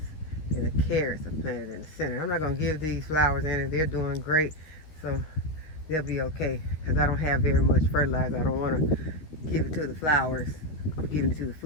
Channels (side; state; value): right; late; 13 ms